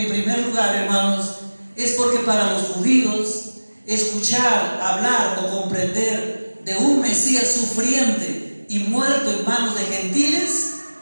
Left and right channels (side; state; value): both; inverted; correlation -1.00